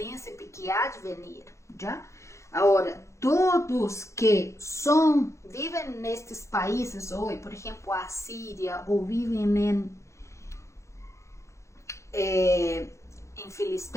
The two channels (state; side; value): late; right; 0.14 ms